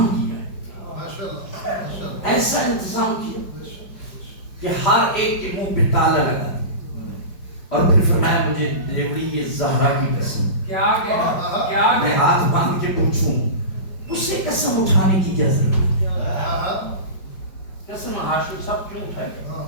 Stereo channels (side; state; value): right; late; 5.2 ms